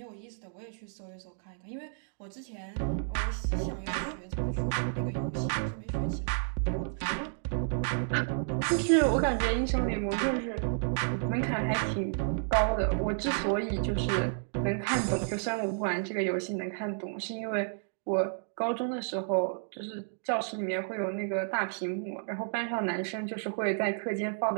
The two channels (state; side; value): silent; left; digital silence